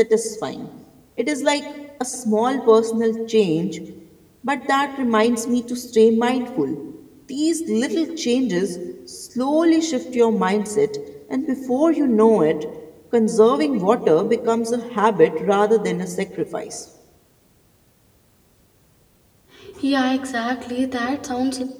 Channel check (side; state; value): both; identical; correlation 1.00